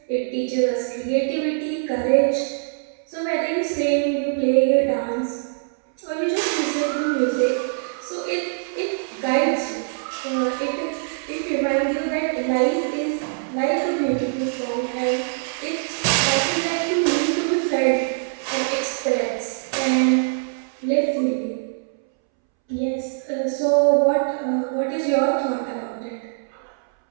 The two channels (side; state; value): left; silent; 63 dB below the other